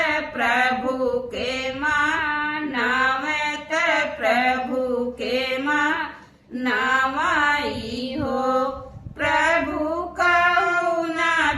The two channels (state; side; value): identical; both; correlation 1.00